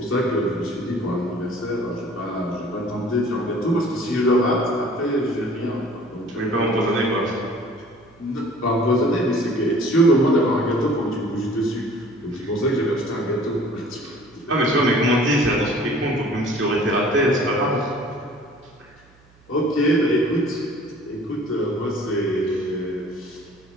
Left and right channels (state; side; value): noise; right; hum, 30 dB below the sound